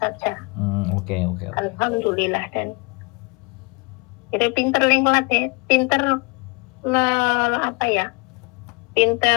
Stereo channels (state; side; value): quieter; right; 28.7 dB